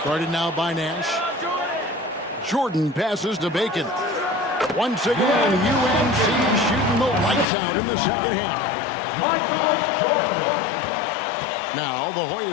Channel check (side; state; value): right; drops out; at 7.5 s